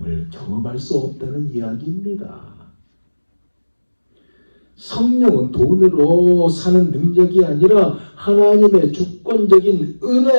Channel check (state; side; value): inverted; both; correlation -1.00